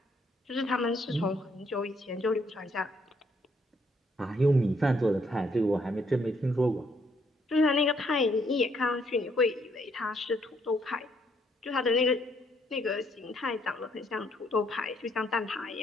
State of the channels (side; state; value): both; normal; correlation 0.70